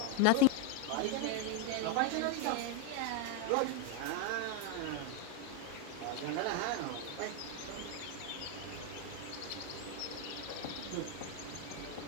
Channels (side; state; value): both; different; correlation 0.01